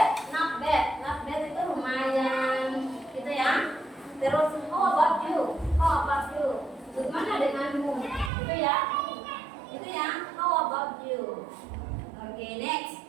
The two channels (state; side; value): drops out; left; at 8.3 s